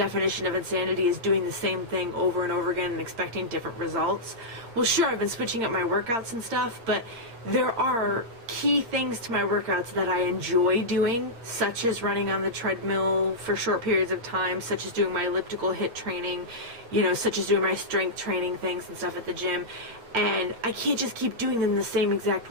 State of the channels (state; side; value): late; left; 8.7 ms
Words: of insanity is doing the same thing over and over again and expecting different results. Well, sure, I've been switching up my workouts and stuff, but there are key things to my workouts that I enjoy doing, such as running on the treadmill for short periods of time, such as doing my elliptical HIIT training, you know, such as doing my strength training things and stuff at the gym. And I can't just keep doing them the same exact